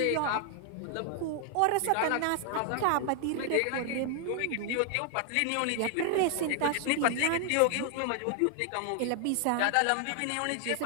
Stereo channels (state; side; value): different; both; correlation 0.00